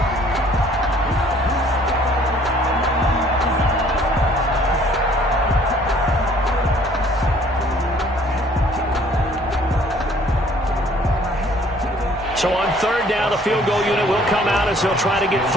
So on 3rd down, the field goal unit will come out as he'll try to get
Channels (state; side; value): normal; both; correlation 0.58